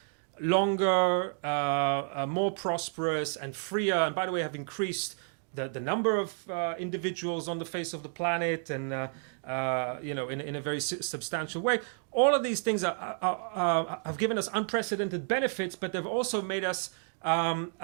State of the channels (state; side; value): silent; left; 57 dB below the other